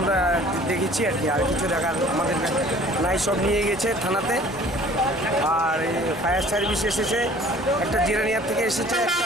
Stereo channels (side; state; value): both; normal; correlation 0.50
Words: আমরা দেখেছি আর কি, আর কিছু দেখার আমাদের নাই। সব নিয়ে গেছে থানাতে, আর ফায়ার সার্ভিস এসেছে, একটা জিরানিয়া থেকে এসেছে, একটা